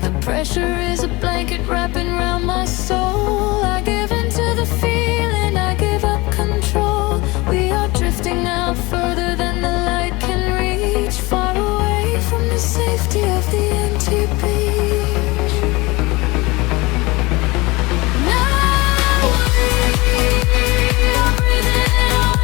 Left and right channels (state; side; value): quieter; right; 23.1 dB